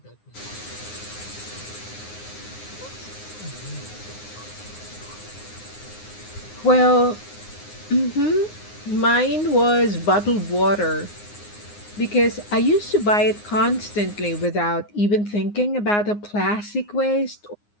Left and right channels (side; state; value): right; late; 9.6 ms